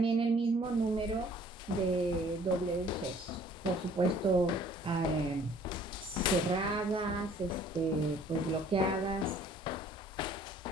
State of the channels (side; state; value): both; normal; correlation 0.56